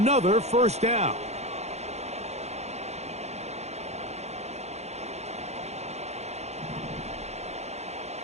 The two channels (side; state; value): left; late; 0.32 ms